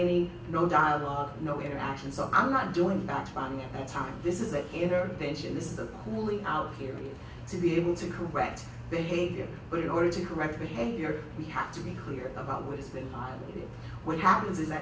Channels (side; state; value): both; identical; correlation 1.00